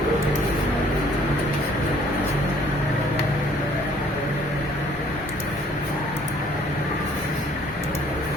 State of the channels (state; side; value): normal; both; correlation 0.59